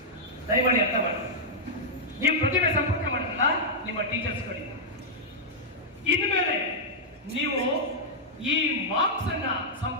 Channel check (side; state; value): both; normal; correlation -0.07